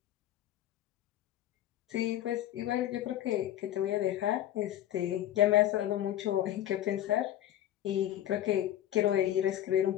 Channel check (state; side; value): quieter; right; 12.3 dB